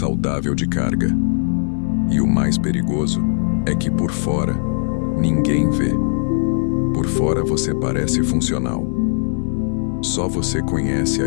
de carga. E o mais perigoso é que por fora, ninguém vê. Por fora você parece funcional. Só você conhece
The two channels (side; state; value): right; silent; digital silence